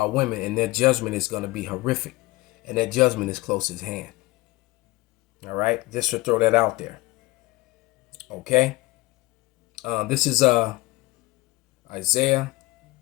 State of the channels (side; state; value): right; quieter; 21.4 dB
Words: women, and their judgment is going to be horrific. And that judgment is close at hand. All right. Just to throw that out there. Okay. This is Isaiah